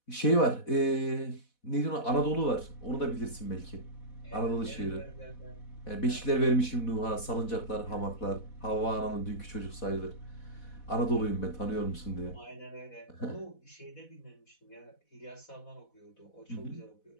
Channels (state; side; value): late; right; 4.1 ms